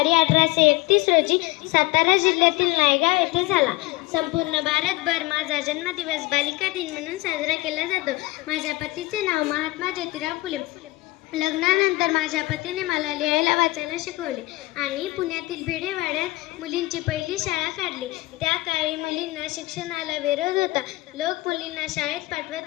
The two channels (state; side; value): quieter; right; 20.7 dB